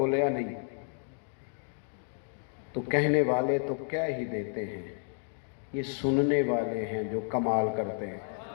نہیں، تو کہنے والے تو کہہ ہی دیتے ہیں، یہ سننے والے ہیں جو کمال کرتے ہیں.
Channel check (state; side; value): silent; right; 57 dB below the other